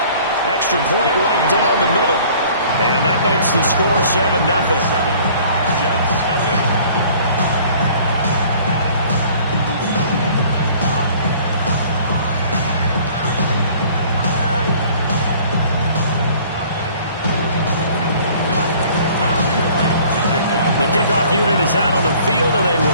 Extra point right down the middle. And that makes the score 7-0. Jets, nothing. The kickoff unit is out on the field, and they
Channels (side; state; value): both; inverted; correlation -0.52